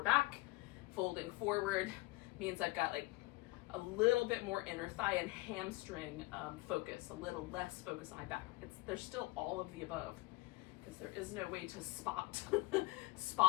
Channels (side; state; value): right; quieter; 21.7 dB